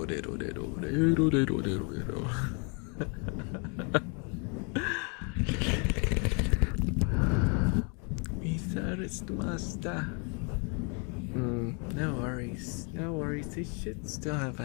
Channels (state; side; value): quieter; right; 36.2 dB